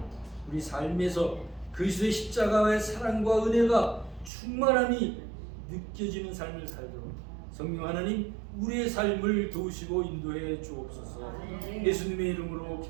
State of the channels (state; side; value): drops out; left; at 4.3 s